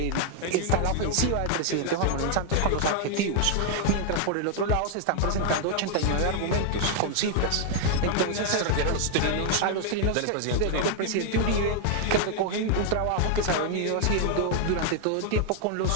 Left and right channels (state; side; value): different; both; correlation 0.00